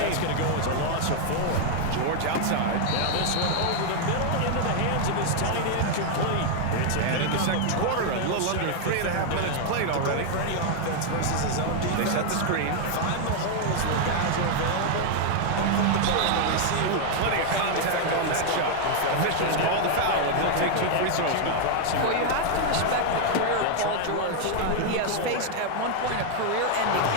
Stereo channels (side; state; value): both; different; correlation 0.00